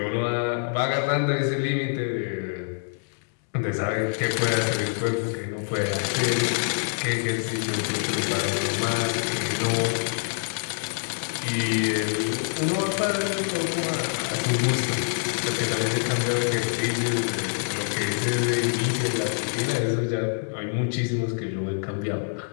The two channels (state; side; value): silent; right; digital silence